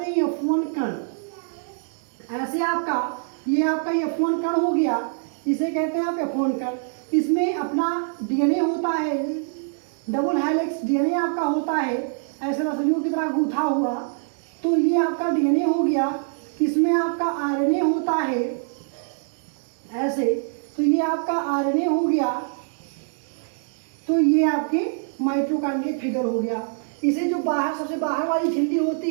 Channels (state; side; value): silent; left; digital silence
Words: हैं F1 कण। ऐसे आपका ये आपका F1 कण हो गया, इसे कहते हैं आप F1 कण। इसमें अपना डीएनए होता है, डबल हेलिक्स डीएनए आपका होता है, ऐसे रस्सियों की तरह गूथा हुआ। तो ये आपका डीएनए हो गया, इसमें आपका आरएनए होता है ऐसे, तो ये आपका आरएनए हो गया। तो ये आपके माइटोकॉन्ड्रिया फिगर हो गया। इसे जो बाहर सबसे बाहर वाली झिल्ली होती